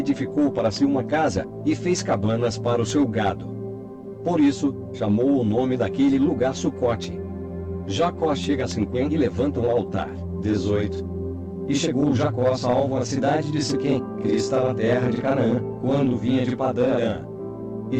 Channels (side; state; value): both; identical; correlation 1.00